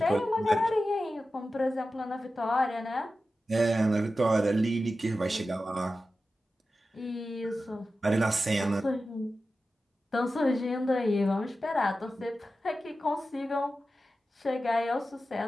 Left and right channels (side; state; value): both; normal; correlation 0.93